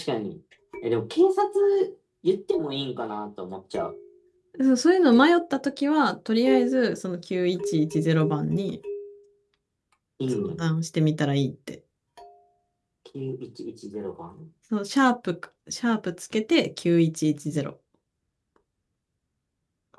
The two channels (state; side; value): identical; both; correlation 1.00